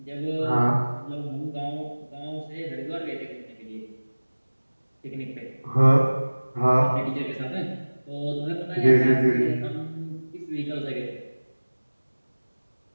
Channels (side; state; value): both; inverted; correlation -1.00